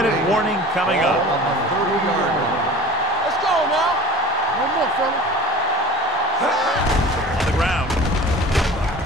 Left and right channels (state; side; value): normal; both; correlation 0.40